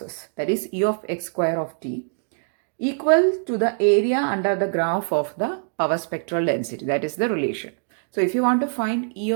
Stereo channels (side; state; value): left; silent; digital silence